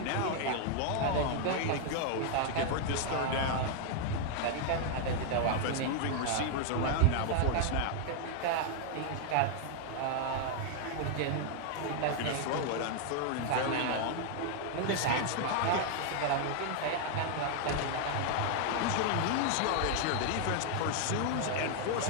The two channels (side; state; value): both; different; correlation 0.00